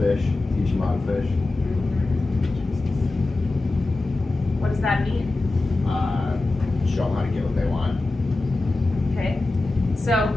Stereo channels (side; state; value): right; quieter; 3.1 dB